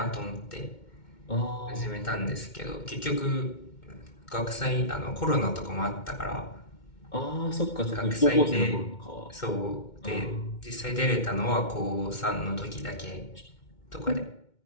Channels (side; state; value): right; late; 2.2 ms